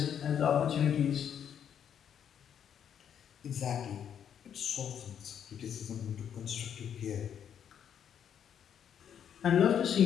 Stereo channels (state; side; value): quieter; right; 8.7 dB